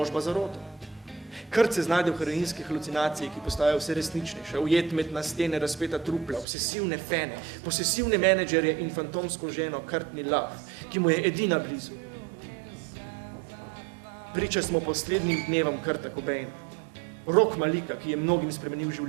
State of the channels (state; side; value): drops out; left; at 6.5 s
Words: zaroto. Kurt se znajde v heroinski halucinaciji, ki postajajo vse resničnejše, ujet med na stene razpeta trupla, obsesivne fene, posesivne menedžerje in fantomsko ženo Courtney Love, ki mu je edina blizu. Priča smo poslednjim dnevom Kurta Cobaina, rock malika, ki je mnogim spremenil